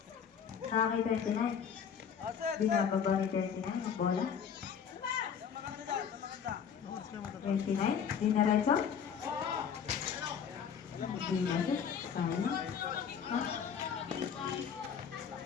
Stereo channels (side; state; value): right; quieter; 7.4 dB